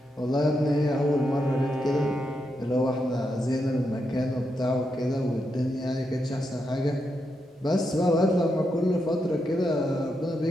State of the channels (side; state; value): both; normal; correlation 0.84